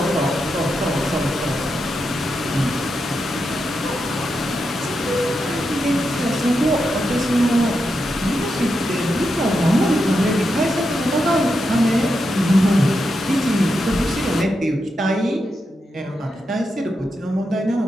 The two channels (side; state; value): both; normal; correlation 0.86